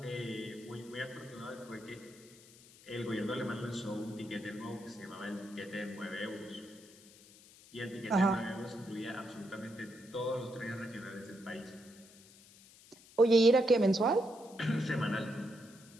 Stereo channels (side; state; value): left; noise; hiss, 22 dB below the sound